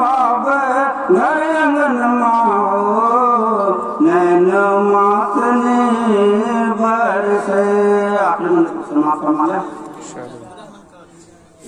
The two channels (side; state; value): both; identical; correlation 1.00